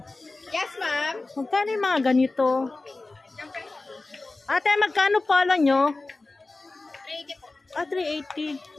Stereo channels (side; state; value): right; quieter; 3.3 dB